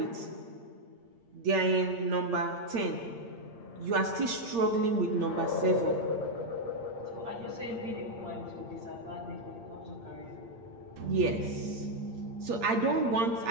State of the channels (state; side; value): late; left; 8.7 ms